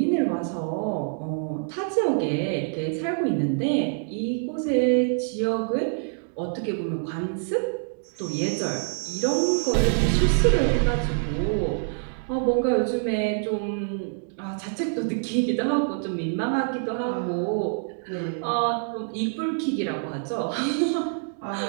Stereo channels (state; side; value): silent; left; digital silence